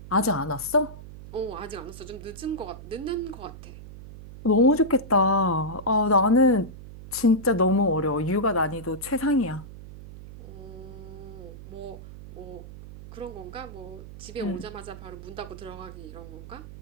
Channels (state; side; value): noise; right; hum, 14 dB below the sound